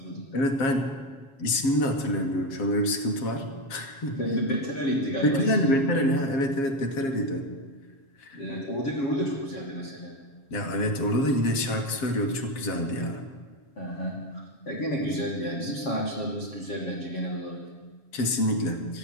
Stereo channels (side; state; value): right; late; 7.4 ms